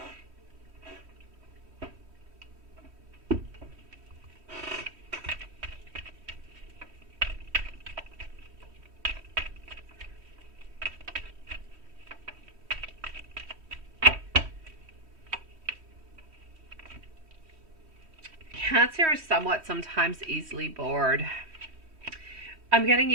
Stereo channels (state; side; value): late; left; 3.1 ms